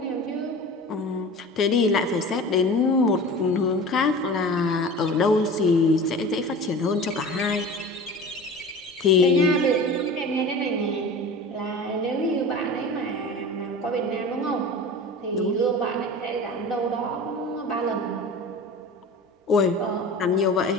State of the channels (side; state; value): both; normal; correlation 0.36